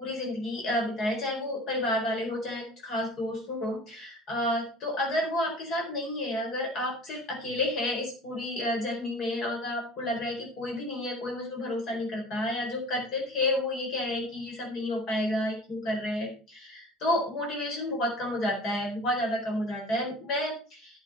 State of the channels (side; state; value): both; normal; correlation 0.42